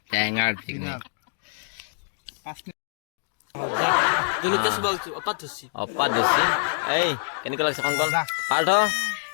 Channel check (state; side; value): silent; right; digital silence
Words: টেঙাৰ পিকনিক অপাত ধৰিছে এই কেনেকুৱা লাগিছে কংকন পাৰ্থ